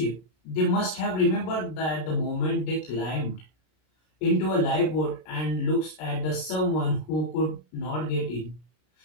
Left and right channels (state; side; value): late; right; 33 ms